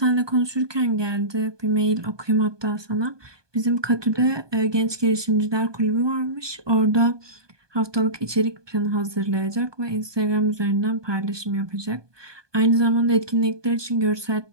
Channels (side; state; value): left; late; 1.2 ms